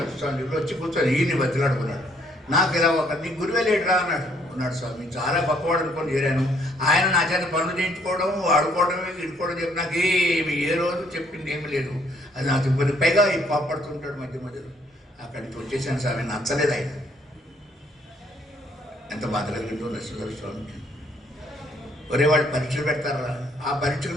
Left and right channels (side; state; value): both; normal; correlation 0.66